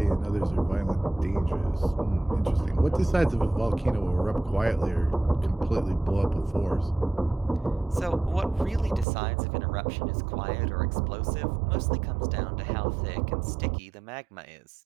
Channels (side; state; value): left; drops out; at 9.1 s